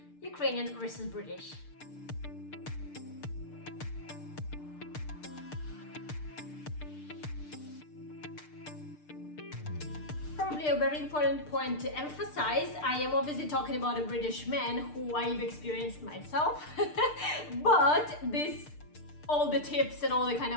Ukrainian versus British. Probably a very important point to emphasize. I am obviously talking about a British man who I've experienced myself, but all the tips and all the kind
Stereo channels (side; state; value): right; late; 6.7 ms